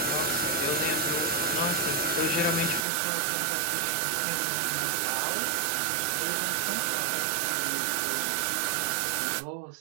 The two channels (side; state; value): left; drops out; at 2.9 s